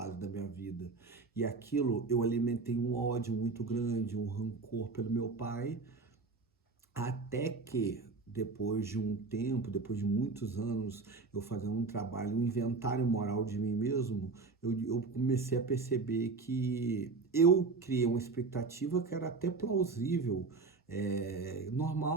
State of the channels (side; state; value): left; quieter; 4.2 dB